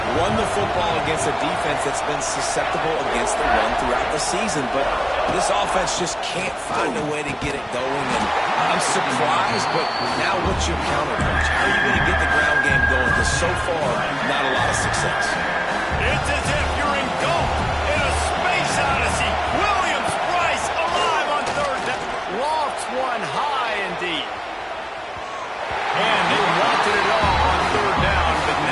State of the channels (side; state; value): both; identical; correlation 1.00